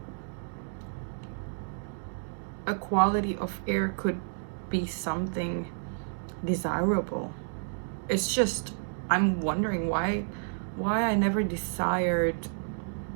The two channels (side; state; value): left; silent; digital silence